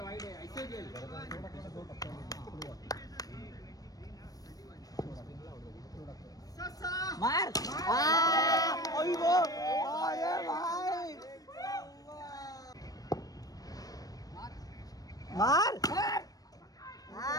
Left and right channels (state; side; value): late; right; 0.18 ms